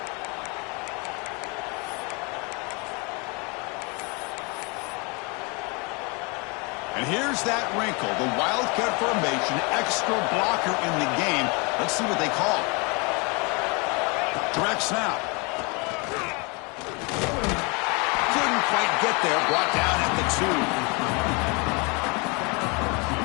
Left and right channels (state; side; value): quieter; right; 30.7 dB